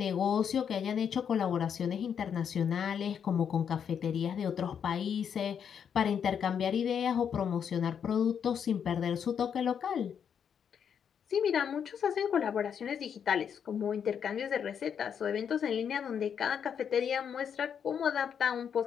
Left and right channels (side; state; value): right; quieter; 7.8 dB